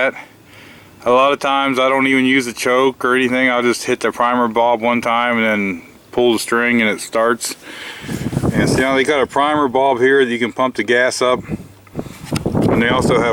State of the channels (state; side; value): identical; both; correlation 1.00